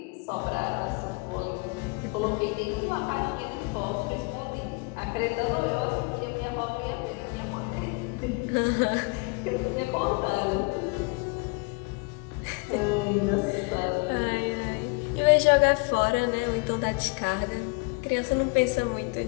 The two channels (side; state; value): right; quieter; 30.6 dB